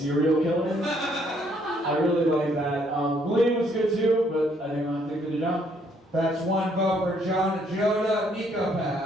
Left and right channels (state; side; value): normal; both; correlation 0.68